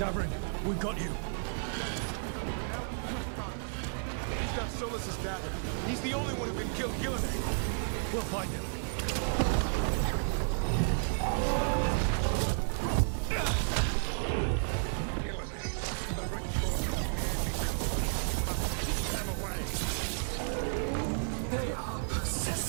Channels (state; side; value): silent; left; digital silence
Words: we got you. He's got Solus's dagger. He's the only one who can kill Gillenane. We'll find him. They are